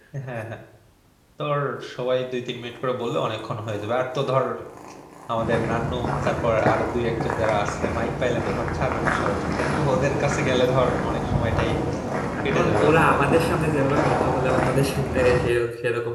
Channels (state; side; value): identical; both; correlation 1.00